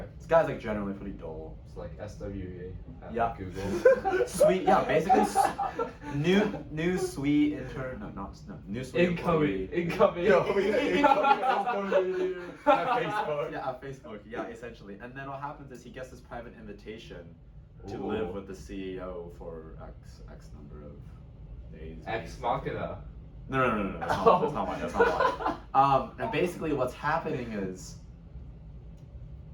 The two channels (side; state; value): both; identical; correlation 1.00